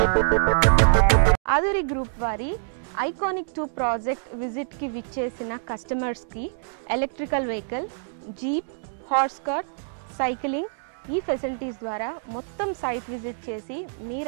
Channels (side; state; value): left; silent; digital silence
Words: ఆదూరి గ్రూప్ వారి ఐకానిక్ 2 ప్రాజెక్ట్ విజిట్కి విచ్చేసిన కస్టమర్స్కి electrical vehicle, jeep, horse cart, cycling ఈ ఫెసిలిటీస్ ద్వారా మొత్తం సైట్ విజిట్ చేసి